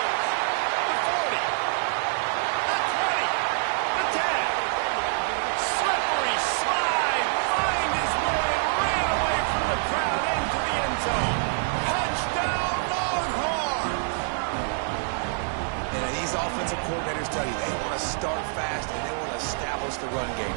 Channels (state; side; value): silent; left; 61 dB below the other